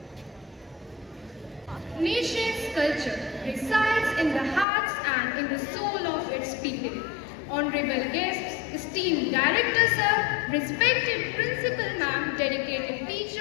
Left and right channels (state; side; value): drops out; right; at 4.7 s